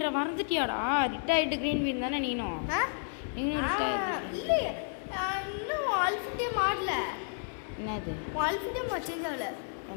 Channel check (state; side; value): silent; right; 56 dB below the other